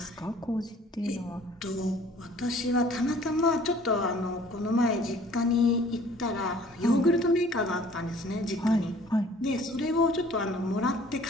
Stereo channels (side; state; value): both; normal; correlation 0.53